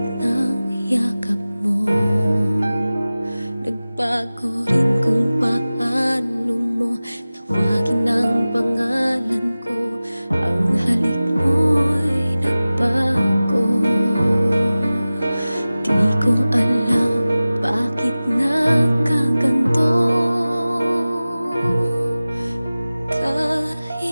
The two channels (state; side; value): inverted; both; correlation -0.97